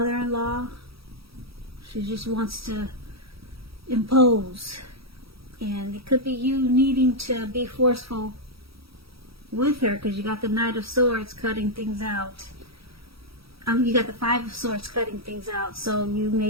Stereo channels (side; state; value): left; late; 0.76 ms